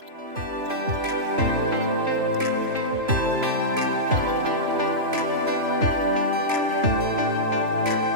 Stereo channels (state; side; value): late; left; 3.0 ms